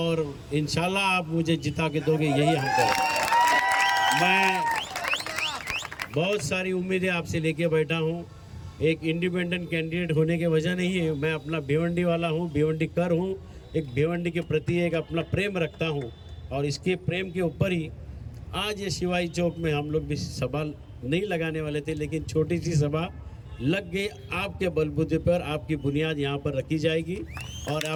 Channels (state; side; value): identical; both; correlation 1.00